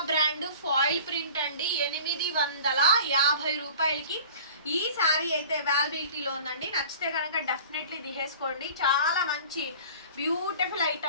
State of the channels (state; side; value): inverted; both; correlation -0.42